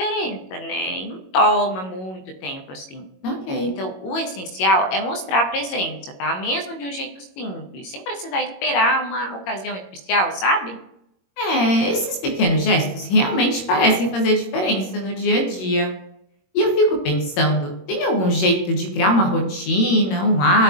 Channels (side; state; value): right; late; 21 ms